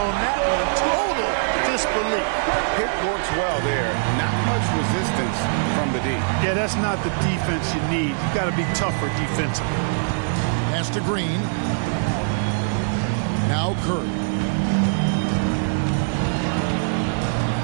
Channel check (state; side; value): silent; left; digital silence